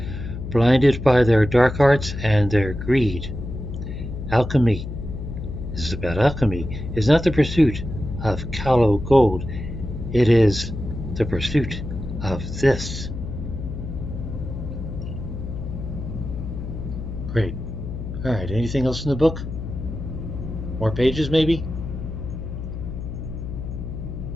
blinded by their dark arts and their greed. Alchemy, this is about alchemy, is not the pursuit of callow gold. It is the pursuit of this. Great. Alright, anything else in the book? More pages, maybe?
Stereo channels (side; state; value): left; noise; hum, 7 dB below the sound